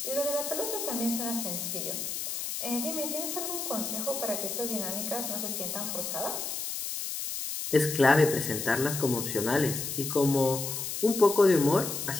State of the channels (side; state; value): left; noise; hiss, 4 dB below the sound